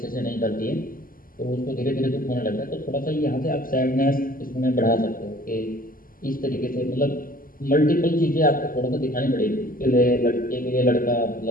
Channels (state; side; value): late; right; 0.41 ms